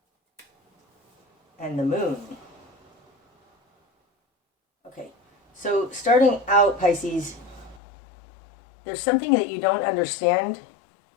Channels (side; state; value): right; drops out; at 7.8 s